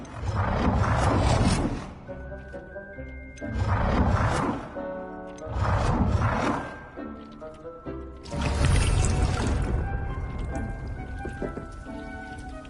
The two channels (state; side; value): identical; both; correlation 1.00